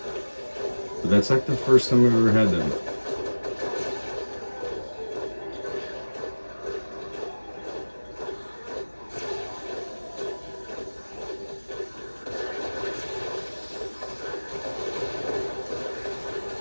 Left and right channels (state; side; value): inverted; both; correlation -1.00